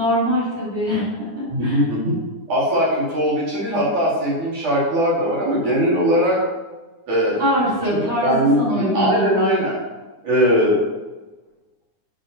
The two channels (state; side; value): late; left; 9.8 ms